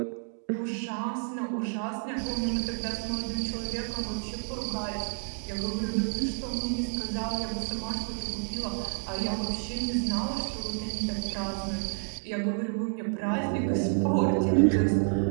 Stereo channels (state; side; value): silent; left; 56 dB below the other